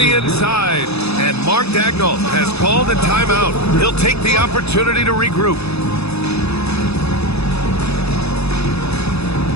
inside. And Mark Daigneault has called a timeout. He'll take the opportunity to regroup.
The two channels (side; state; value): right; late; 0.79 ms